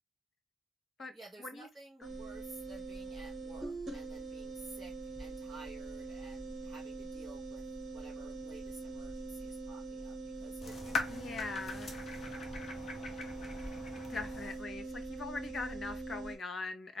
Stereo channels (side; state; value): both; normal; correlation 0.73